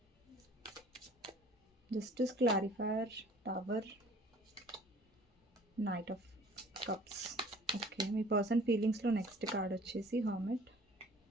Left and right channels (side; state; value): both; normal; correlation 0.52